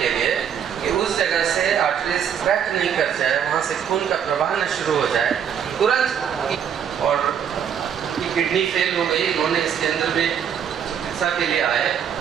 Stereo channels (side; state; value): left; quieter; 8.3 dB